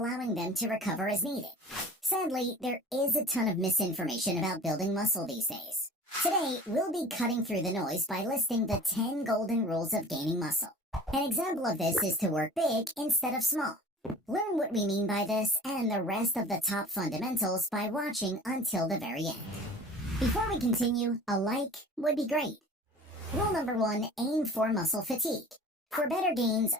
them to recover as needed. Sadly, there is a ton of misinformation about building muscle these days. Today, we'll be cutting through the noise by listing the 10 golden rules of gaining muscle. An example of this is to work big instead of small. Learn what we mean by this and the rest of the top fundamentals by watching until the very end. Before we continue, a like would be great. Rule number 1, aim for muscle fatigue. For better gains,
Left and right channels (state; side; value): normal; both; correlation 0.43